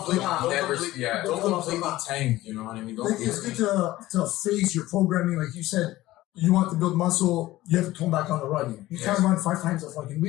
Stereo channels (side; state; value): right; quieter; 16.7 dB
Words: tank. You know what I mean? It's good to phase your programming, like you said. You want to build muscle, you have to tone back on the running. You can't run 5 times a fucking